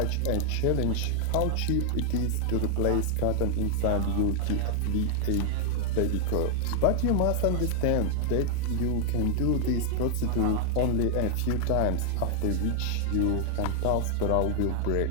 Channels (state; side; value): different; both; correlation 0.00